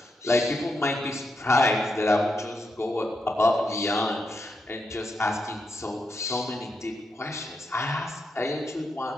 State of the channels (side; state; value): both; normal; correlation 0.83